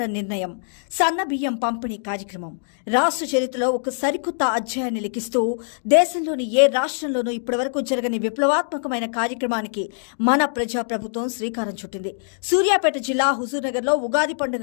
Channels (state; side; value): silent; right; digital silence